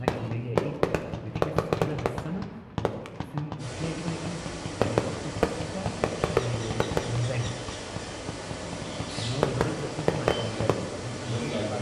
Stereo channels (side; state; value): both; identical; correlation 1.00